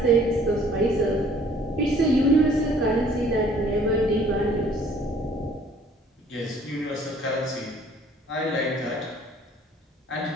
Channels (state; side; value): normal; both; correlation 0.56